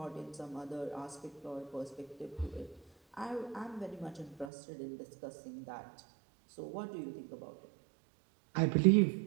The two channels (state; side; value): drops out; left; at 4.5 s